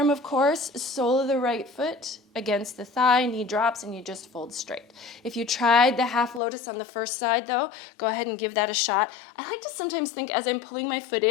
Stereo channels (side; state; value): right; drops out; at 6.4 s